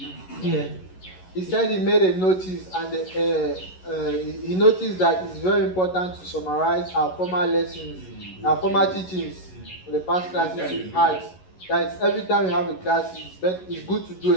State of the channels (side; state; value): right; late; 11 ms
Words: Yeah. He said he made a notice and he noticed that it's very important to summarize our former lessons, our former teachings for the past classes we've had. That every time we have a class, it's good to do